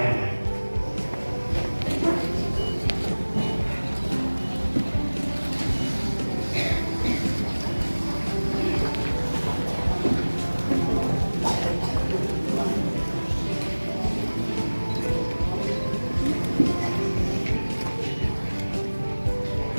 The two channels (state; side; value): inverted; both; correlation -1.00